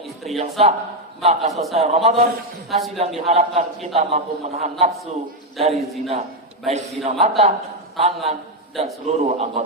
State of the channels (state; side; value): normal; both; correlation 0.04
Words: istri yang sah. Maka selesai Ramadan, hasil yang diharapkan kita mampu menahan nafsu dari zina, baik zina mata, tangan, dan seluruh